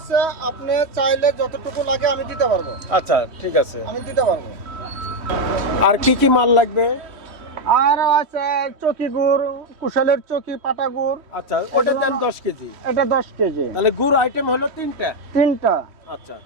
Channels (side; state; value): left; late; 3.1 ms